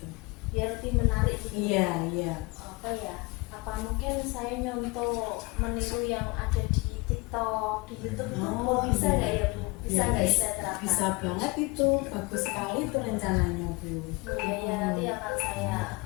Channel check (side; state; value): right; quieter; 25.2 dB